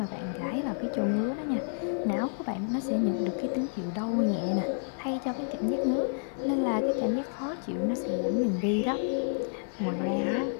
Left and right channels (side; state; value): right; silent; digital silence